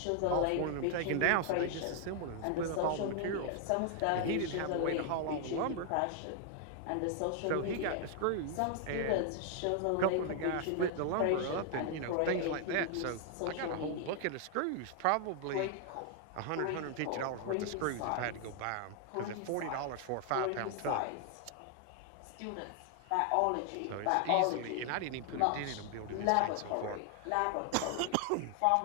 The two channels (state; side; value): different; both; correlation 0.00